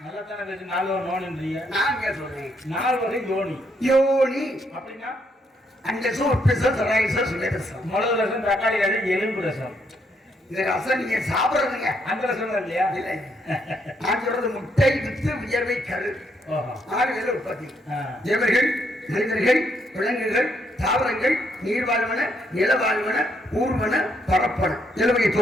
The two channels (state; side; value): normal; both; correlation 0.74